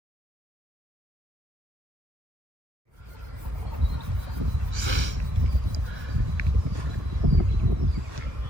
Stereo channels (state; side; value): late; left; 1.3 ms